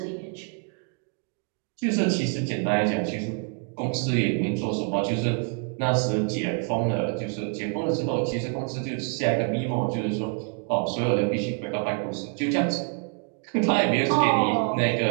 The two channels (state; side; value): quieter; left; 37.9 dB